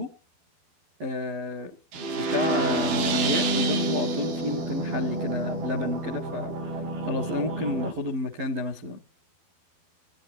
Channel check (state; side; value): late; left; 12 ms